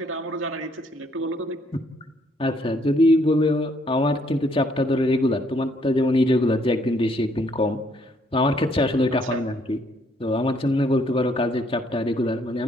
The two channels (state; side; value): normal; both; correlation 0.68